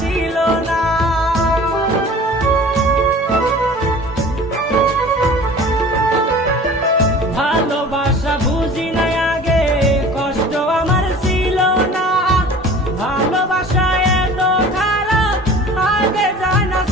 ছিল না। ভালোবাসা বুঝি নাই আগে, কষ্ট আমার ছিল না, ভালোবাসা এত খারাপ আগে জানা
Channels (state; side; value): normal; both; correlation 0.43